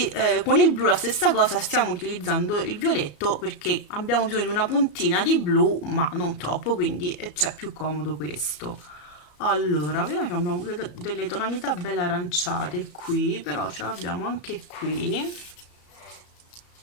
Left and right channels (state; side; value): late; right; 34 ms